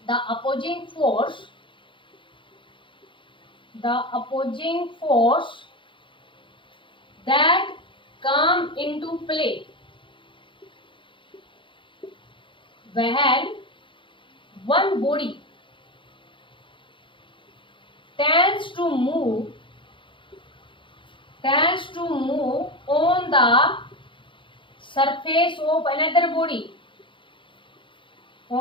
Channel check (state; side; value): late; right; 0.24 ms